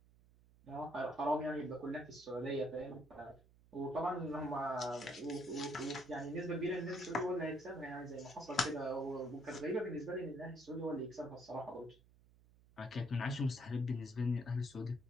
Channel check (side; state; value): right; noise; hum, 26 dB below the sound